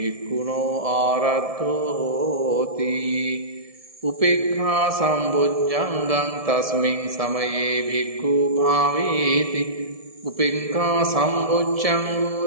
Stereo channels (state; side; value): late; left; 1.7 ms